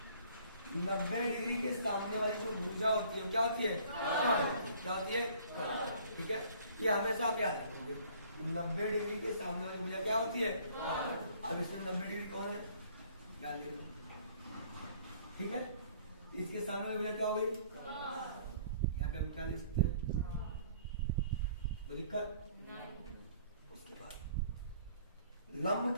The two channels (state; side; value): inverted; both; correlation -0.57